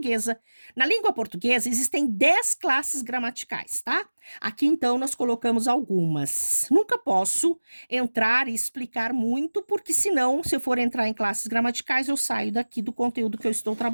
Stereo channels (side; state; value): both; inverted; correlation -1.00